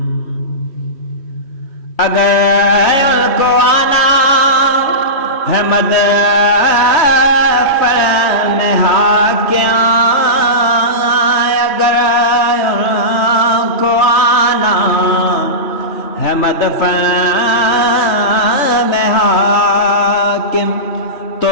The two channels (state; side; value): late; right; 3.1 ms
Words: اگر ان کو آنا ہے مدفن میں حاکم، اگر ان کو آنا ہے مدفن میں حاکم، تو